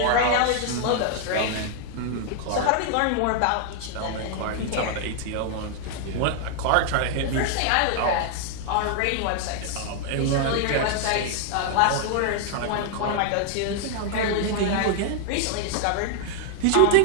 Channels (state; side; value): different; both; correlation 0.00